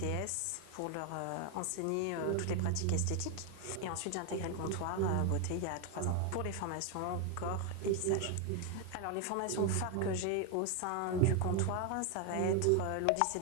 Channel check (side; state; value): both; different; correlation 0.01